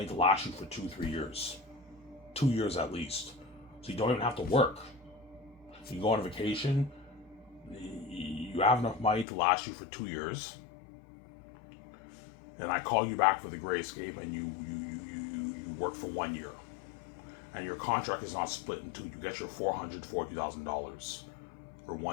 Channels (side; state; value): right; drops out; at 9.2 s